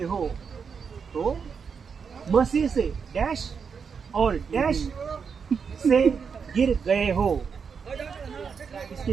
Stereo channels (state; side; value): quieter; left; 6.1 dB